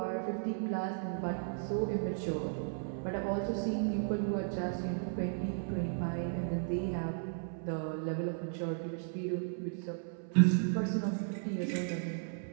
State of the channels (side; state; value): left; silent; 54 dB below the other